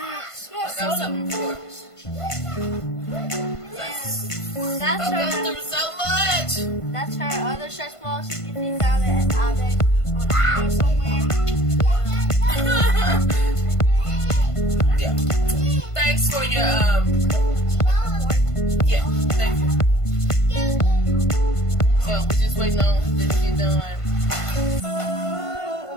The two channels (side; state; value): right; late; 1.5 ms